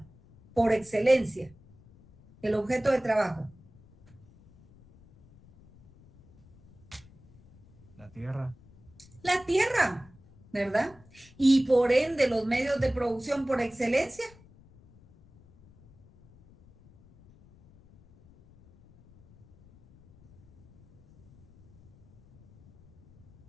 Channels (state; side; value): noise; left; rumble, 26 dB below the sound